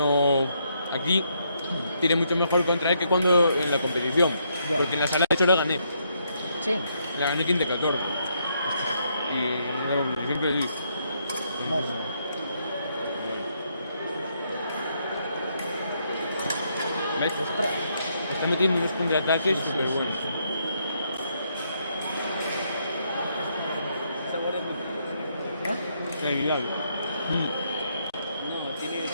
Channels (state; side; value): inverted; both; correlation -0.75